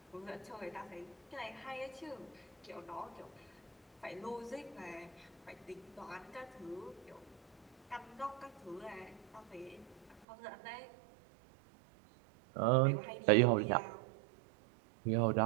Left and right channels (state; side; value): drops out; left; at 10.2 s